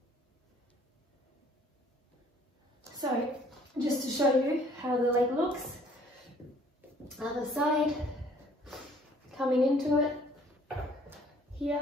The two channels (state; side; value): normal; both; correlation 0.58